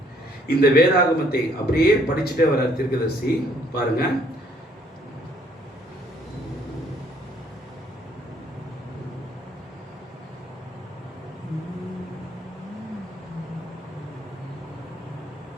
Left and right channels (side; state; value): both; normal; correlation 0.64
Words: இந்த வேதாகமத்தை அப்படியே படிச்சுட்டே வர தீர்க்கதரிசி பாருங்க.